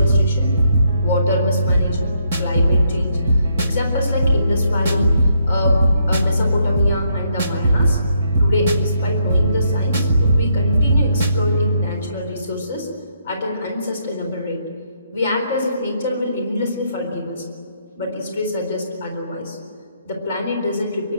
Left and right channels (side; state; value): both; inverted; correlation -0.74